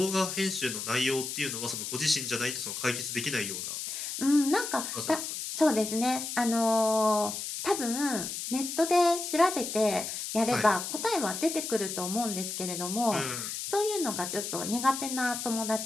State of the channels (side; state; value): left; noise; hiss, 5 dB below the sound